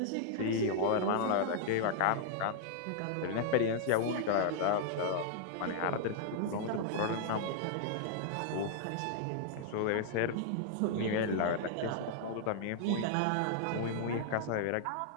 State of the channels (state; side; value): different; both; correlation -0.01